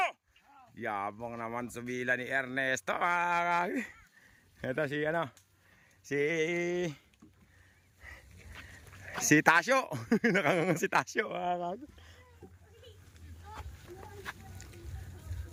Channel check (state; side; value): identical; both; correlation 1.00